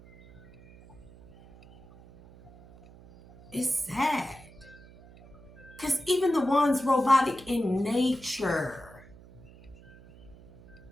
It's sad. Because even the ones robotic in nature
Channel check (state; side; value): noise; right; hum, 22 dB below the sound